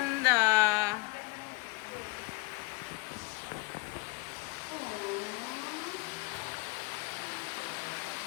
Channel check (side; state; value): right; quieter; 25.3 dB